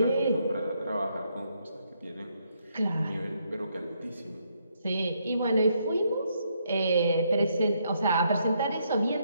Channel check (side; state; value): both; inverted; correlation -0.74